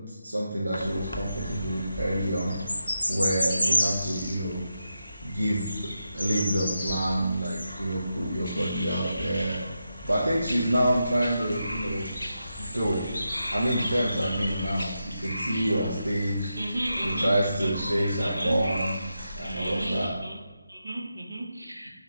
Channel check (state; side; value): inverted; both; correlation -0.87